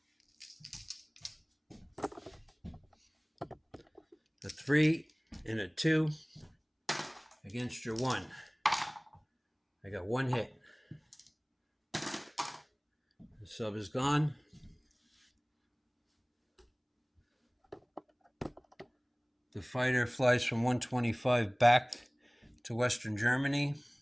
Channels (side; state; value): both; identical; correlation 1.00